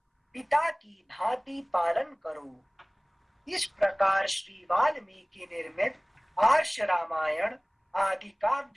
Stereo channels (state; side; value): identical; both; correlation 1.00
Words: पिता की भांति पालन करो। इस प्रकार श्री वाल्मीकि निर्मित आर्ष रामायण आदि